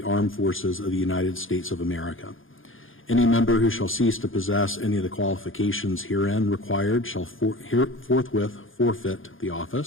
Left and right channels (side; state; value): right; late; 0.58 ms